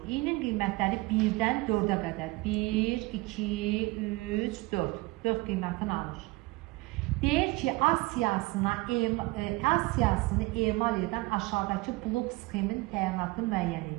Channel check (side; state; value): left; quieter; 22.4 dB